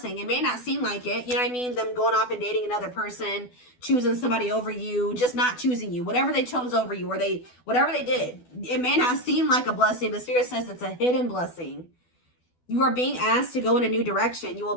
It may not seem like it, you know what I mean? Them going off and dating another person, choosing somebody over you, just not choosing you. Whatever they chose over you, or whatever they did, it may not seem like a blessing, but Spirit says it's a hidden blessing. You are being asked to go in a new direction. You will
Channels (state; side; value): late; right; 12 ms